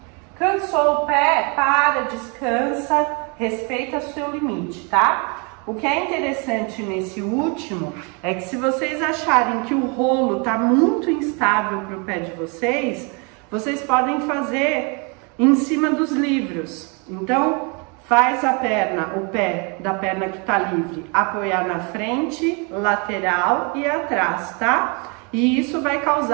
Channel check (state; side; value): quieter; left; 33.2 dB